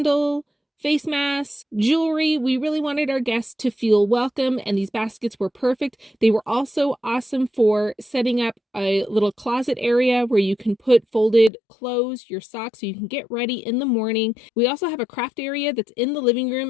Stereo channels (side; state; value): right; drops out; at 11.5 s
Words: face masks, jewelry. We really wanted our guests to feel welcome, and these baskets were perfect. They were also awesome for setting up a little closet area where you can put folded clothes, your socks, so you can get ready in the morning. We also have a craft area that's in the living room